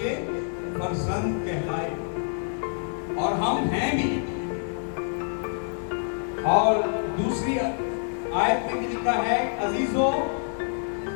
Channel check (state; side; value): silent; right; digital silence